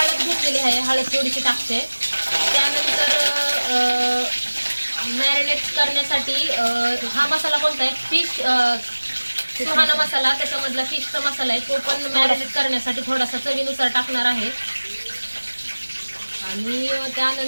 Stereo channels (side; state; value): both; inverted; correlation -1.00